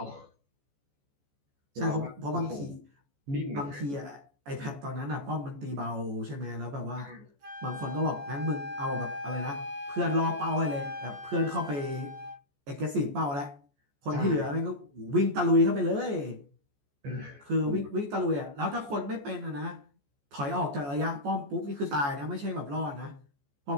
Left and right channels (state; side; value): late; left; 14 ms